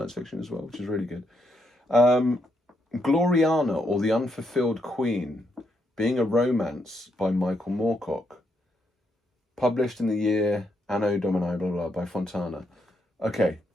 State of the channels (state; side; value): normal; both; correlation 0.78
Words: fiction as well, which is really good. Gloriana, or The Unfulfilled Queen, being a romance by Michael Moorcock. Published in the year Anno Domini, blah, blah, by Fontana. Okay.